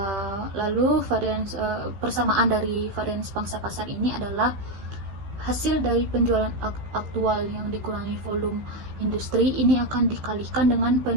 Lalu persamaan dari varians pangsa pasar ini adalah hasil dari penjualan aktual yang dikurangi volume industri, ini akan dikalikan dengan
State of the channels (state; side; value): late; left; 15 ms